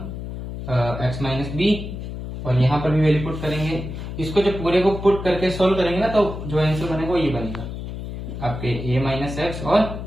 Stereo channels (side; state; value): left; noise; hum, 8 dB below the sound